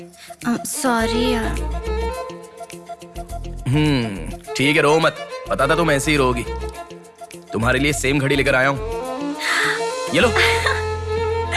सॉरी यार। ठीक है, रो मत। पता था तुम ऐसे ही रोगी। तुम्हारे लिए सेम घड़ी लेकर आया हूँ। ये लो।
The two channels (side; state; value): both; identical; correlation 1.00